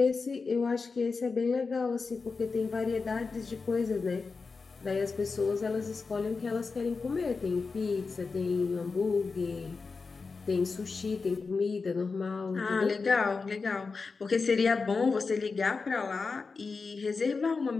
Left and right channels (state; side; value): quieter; right; 4.5 dB